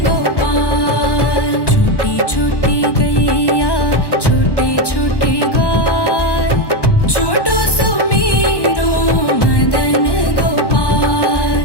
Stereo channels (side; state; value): right; late; 1.1 ms